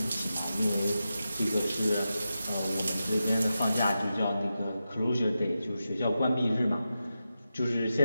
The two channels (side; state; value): both; inverted; correlation -0.90